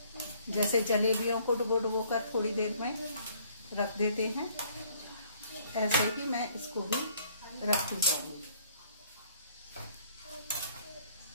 जैसे जलेबियों को डुबो डुबो कर थोड़ी देर में रख देते हैं, ऐसे ही मैं इसको भी रखती जाऊंगी।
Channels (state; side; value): inverted; both; correlation -0.61